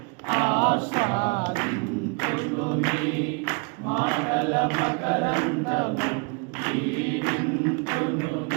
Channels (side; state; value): left; quieter; 33.0 dB